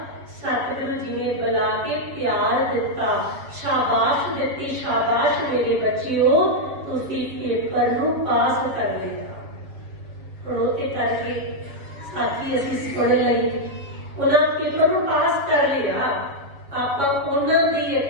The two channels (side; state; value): left; late; 7.2 ms